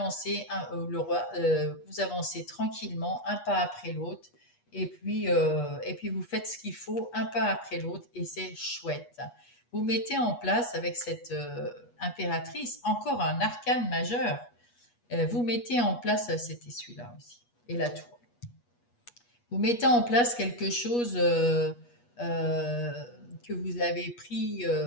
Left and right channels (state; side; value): late; right; 8.3 ms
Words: le roi, vous avancez tranquillement, un pas après l'autre. Et puis vous faites ce qu'il faut, un pas après l'autre, et c'est chouette. Vous mettez en place avec cette impératrice encore un arcane majeur. Vous mettez en place, c'était celui-là aussi, et la tour. Vous mettez en place quelque chose euh, que vous avez pris,